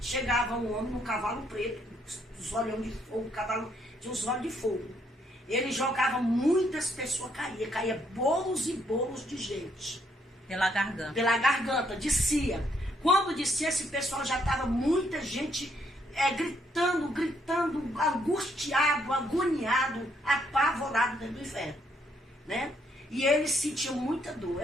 chegava um homem num cavalo preto, os olhos de fogo, o cavalo tinha os olhos de fogo. Ele jogava, muitas pessoas caía bolos e bolos de gente. Pela garganta, descia. Quando descia, esse pessoal já estava muita gente gritando, angustiado, agoniado, apavorado dentro do inferno, né? E eles sentiam muita dor,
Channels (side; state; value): both; normal; correlation 0.72